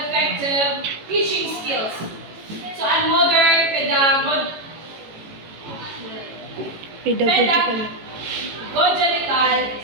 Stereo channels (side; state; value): left; late; 18 ms